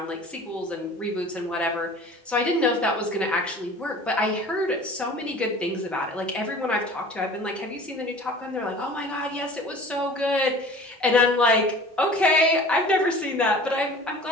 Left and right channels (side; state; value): both; normal; correlation 0.43